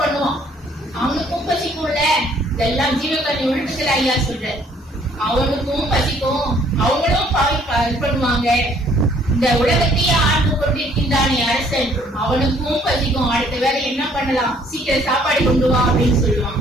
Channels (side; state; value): both; normal; correlation 0.61